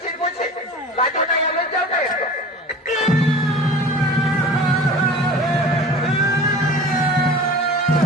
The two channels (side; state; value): both; normal; correlation 0.39